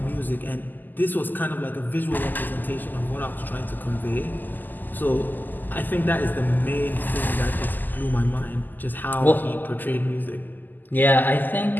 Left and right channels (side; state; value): right; late; 0.087 ms